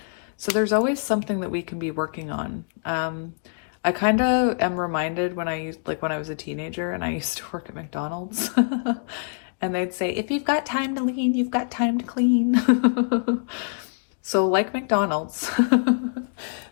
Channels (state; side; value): silent; right; digital silence